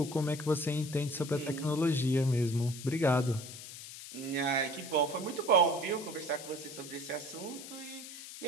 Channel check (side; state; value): left; noise; hiss, 12 dB below the sound